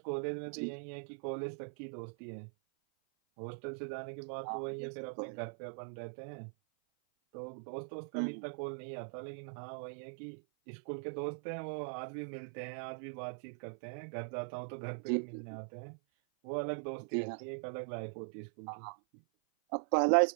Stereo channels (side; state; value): left; silent; 51 dB below the other